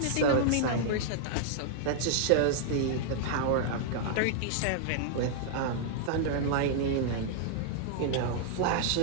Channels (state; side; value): different; both; correlation -0.01